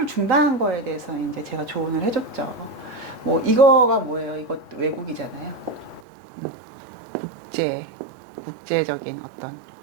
중단한 거에 대해서 이제 제가 조언을 해줬죠. 뭐 이거가 뭐예요? 이것도 외국이잖아요. 국제적인 어떤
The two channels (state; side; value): drops out; left; at 6.0 s